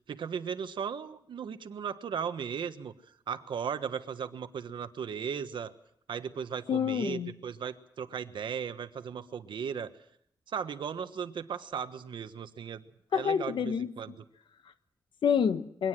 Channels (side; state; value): both; normal; correlation 0.50